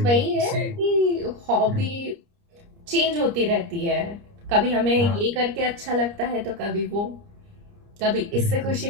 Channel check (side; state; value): left; late; 29 ms